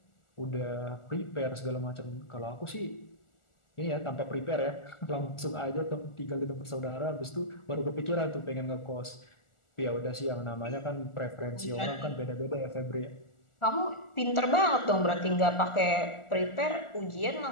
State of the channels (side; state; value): right; late; 1.4 ms